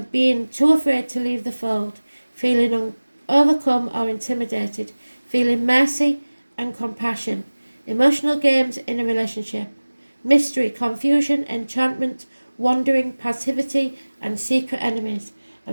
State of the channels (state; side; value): inverted; both; correlation -1.00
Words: being too afraid to leave the fold, feeling overcome or intimidated, feeling mercy and compassion, emotional games in a relationship, mystery, confusion, enchantment, wandering, passivity, and secret enemies.